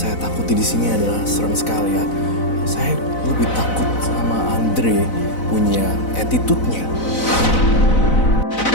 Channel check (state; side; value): late; right; 4.0 ms